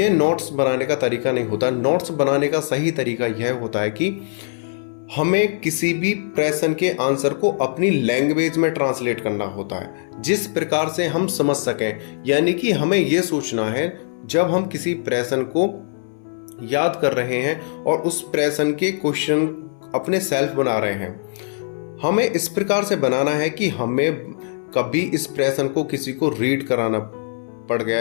नोट्स बनाने का तरीका नहीं होता। नोट्स बनाने का सही तरीका यह होता है कि हमें किसी भी प्रश्न के आंसर को अपनी लैंग्वेज में ट्रांसलेट करना होता है, जिस प्रकार से हम समझ सकें। यानी कि हमें यह सोचना है, जब हम किसी प्रश्न को याद कर रहे हैं और उस प्रश्न के क्वेश्चन अपने सेल्फ बना रहे हैं, हमें इस प्रकार से बनाना है कि हमें कभी इस प्रश्न को किसी को रीड कराना पड़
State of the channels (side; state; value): right; silent; 63 dB below the other